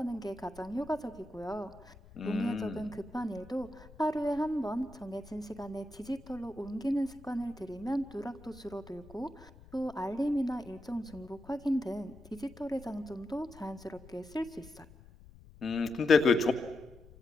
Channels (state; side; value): noise; left; rumble, 20 dB below the sound